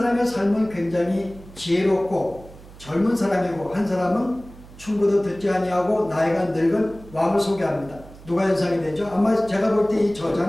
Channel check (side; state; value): right; noise; hum, 19 dB below the sound